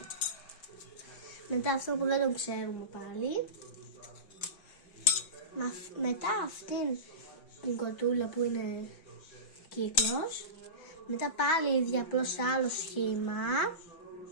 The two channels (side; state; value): right; late; 6.2 ms